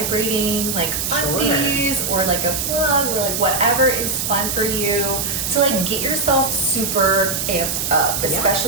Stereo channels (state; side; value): noise; right; hiss, 1 dB below the sound